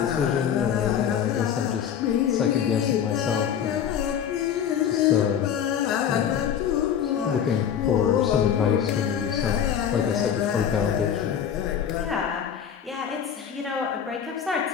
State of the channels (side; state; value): right; quieter; 8.6 dB